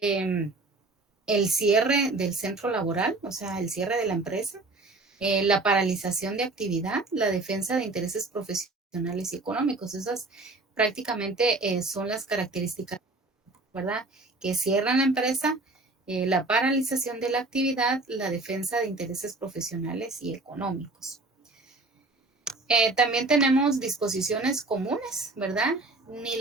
el cierre del centro laboral, o sea, el cierre de la empresa, la paralización de actividad, la defensa de intereses profesionales y económicos. Esas prácticamente son las características, ¿verdad? Que cierran la empresa, la paralización de la actividad, la defensa de intereses profesionales y económicos. También tenemos disposiciones comunes, ¿verdad? Ni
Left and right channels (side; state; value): left; quieter; 3.2 dB